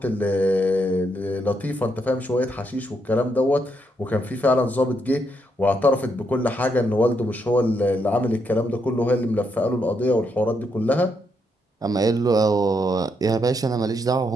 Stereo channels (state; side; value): normal; both; correlation 0.78